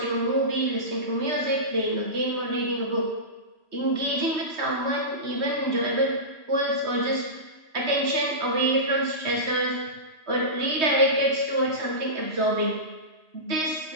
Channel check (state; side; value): late; left; 3.2 ms